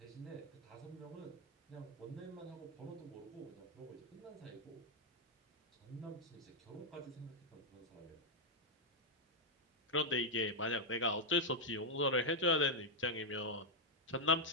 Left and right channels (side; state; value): both; normal; correlation -0.01